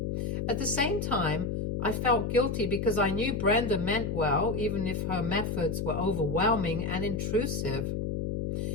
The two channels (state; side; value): noise; left; hum, 1 dB below the sound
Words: At the same time, I felt guilty because I knew Brenda meant well, even if her methods were overwhelming and intrusive.